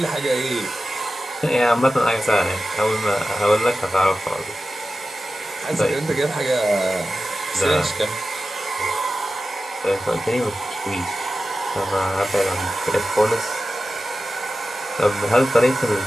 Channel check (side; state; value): both; normal; correlation 0.94